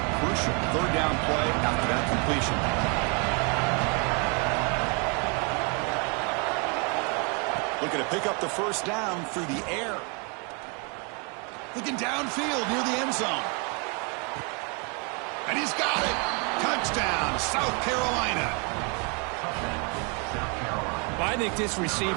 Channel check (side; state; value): left; quieter; 34.4 dB